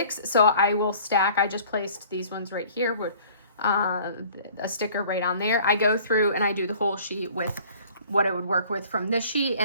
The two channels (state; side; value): inverted; both; correlation -0.51